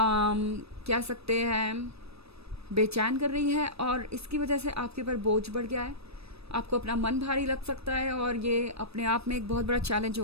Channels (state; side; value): late; left; 0.78 ms